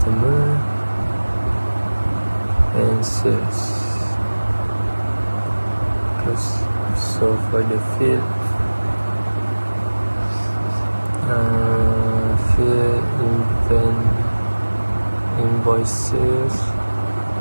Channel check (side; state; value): both; inverted; correlation -1.00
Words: and sales. So for the field, invoices,